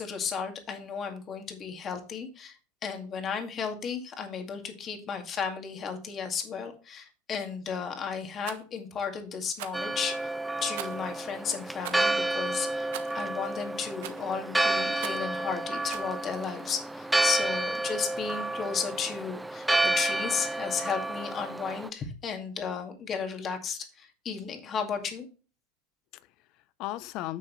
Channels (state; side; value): normal; both; correlation 0.78